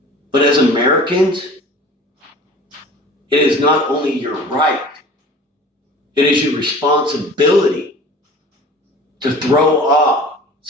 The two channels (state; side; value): normal; both; correlation 0.43